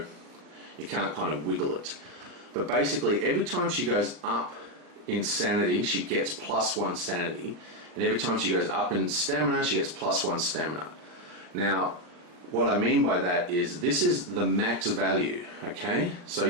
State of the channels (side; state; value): left; late; 39 ms